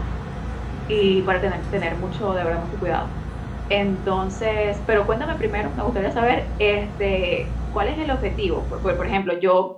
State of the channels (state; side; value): identical; both; correlation 1.00